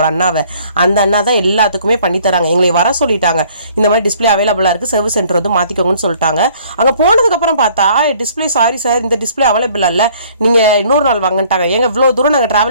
அண்ணாவை, அந்த அண்ணா தான் எல்லாத்துக்குமே பண்ணி தராங்க. எங்களை வர சொல்லிட்டாங்க, இந்த மாதிரி டிஸ்பிளே அவைலபிளாக இருக்குது, சர்வீஸ் சென்டர் வந்து மாற்றிக்கோங்கன்னு சொல்லிட்டாங்க. அங்கே போனதுக்கப்புறம் பார்த்தா டிஸ்பிளே சாரி சார் இந்த டிஸ்பிளே அவைலபிள் இல்லை, நீங்கள் இன்னொரு நாள் வாங்கிட்டாங்க. எங்கள் இவ்வளோ தூரம் நாங்கள்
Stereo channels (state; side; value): inverted; both; correlation -0.58